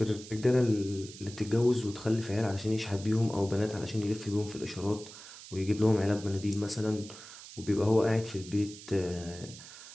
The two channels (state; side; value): noise; right; hiss, 15 dB below the sound